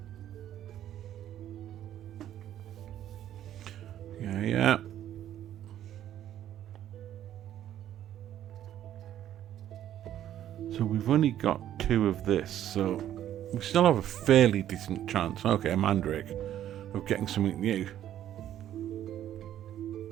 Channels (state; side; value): quieter; left; 11.5 dB